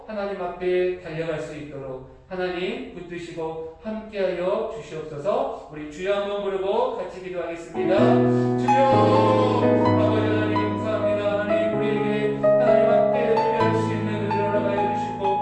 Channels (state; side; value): identical; both; correlation 1.00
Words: 하나님 앞에 달려갈 수 있도록 하나님 붙드시고 함께하여 주시옵소서. 우리 주여 한번 부르고 같이 기도하겠습니다. 주여 아버지 하나님 감사합니다. 하나님 우리에게